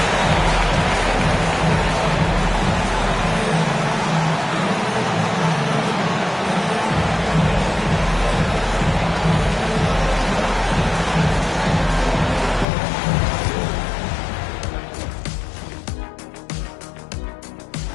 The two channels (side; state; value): right; drops out; at 12.7 s